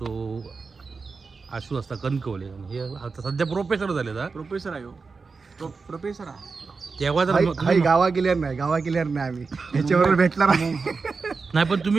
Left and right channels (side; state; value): left; quieter; 4.6 dB